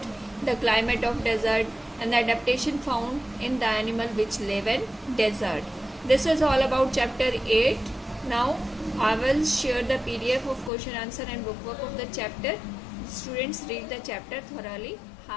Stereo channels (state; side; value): drops out; right; at 10.7 s